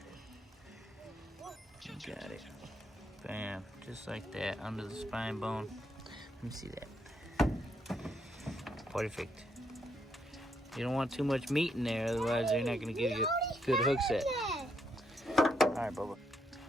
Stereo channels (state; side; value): normal; both; correlation 0.76